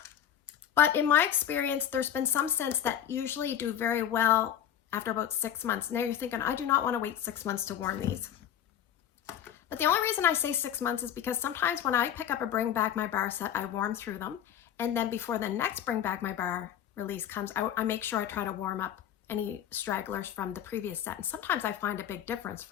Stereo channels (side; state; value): right; quieter; 10.1 dB